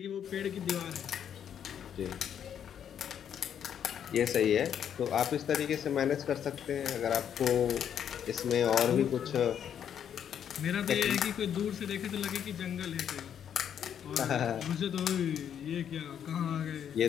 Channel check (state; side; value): quieter; right; 8.9 dB